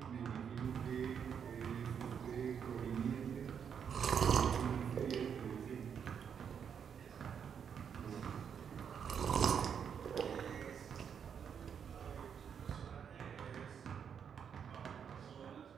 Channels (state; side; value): quieter; left; 7.5 dB